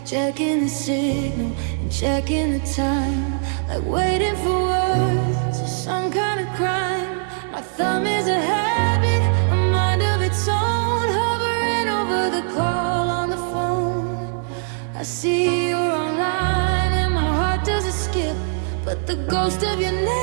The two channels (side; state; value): left; silent; digital silence